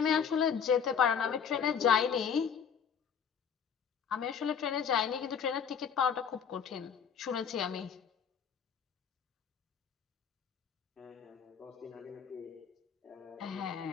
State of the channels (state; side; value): quieter; right; 7.4 dB